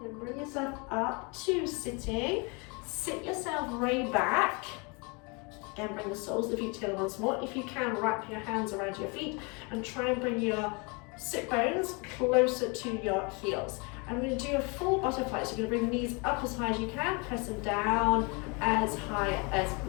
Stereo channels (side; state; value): right; quieter; 31.0 dB